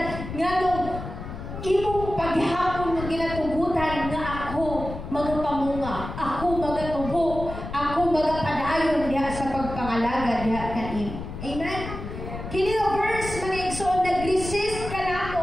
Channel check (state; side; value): noise; left; rumble, 9 dB below the sound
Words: nga nung imong paghapon nga ginatugutan nga ako magapamunga, ako magatubo, ako magapadayon diha sa pagpangalaga diha kanin. Amen. Kini nga verse mga igsoon nag-resist